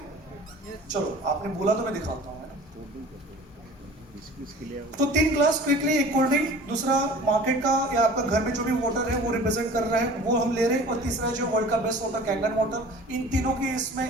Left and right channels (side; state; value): both; normal; correlation 0.43